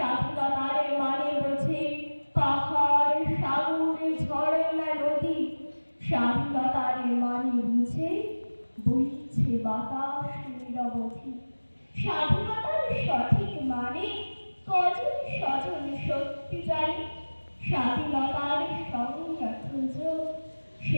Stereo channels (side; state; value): both; inverted; correlation -1.00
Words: মানে বুঝে পাহাড় সাগর ঝর্ণা নদী, স্বাধীনতার মানে বুঝে বইছে বাতাস নিরবধি। স্বাধীনতার সঠিক মানে কজন স্বজন সত্যি জানে, স্বাধীনতার সংজ্ঞা খুঁজো